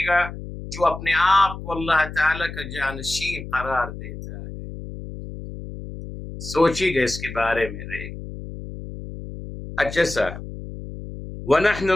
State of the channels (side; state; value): left; noise; hum, 11 dB below the sound